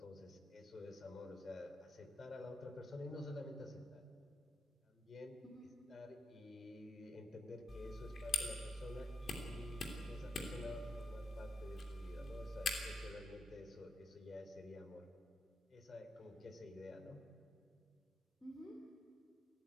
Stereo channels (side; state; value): both; normal; correlation 0.83